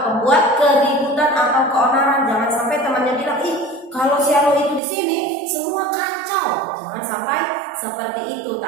pembuat keributan atau keonaran. Jangan sampai temannya bilang, ih kalau si Anu itu di sini semua kacau. Jangan sampai seperti itu.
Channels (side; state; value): left; drops out; at 4.8 s